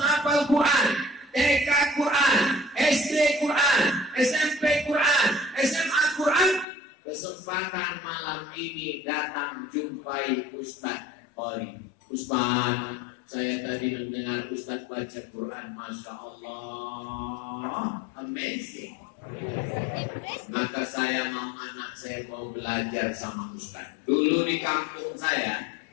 Quran, TK Quran, SD Quran, SMP Quran, SMA Quran, kesempatan malam ini datang jumpai Ustaz Qori. Ustaz, saya tadi mendengar Ustaz baca Quran, Masya Allah, amazing. Maka saya mau anak saya mau belajar sama Ustaz. Dulu di kampung saya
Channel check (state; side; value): drops out; right; at 6.7 s